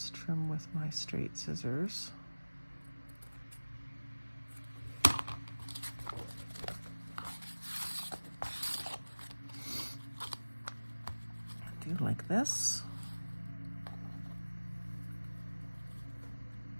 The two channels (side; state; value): both; inverted; correlation -1.00